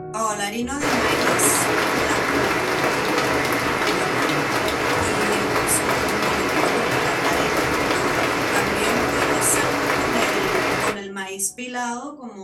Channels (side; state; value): both; identical; correlation 1.00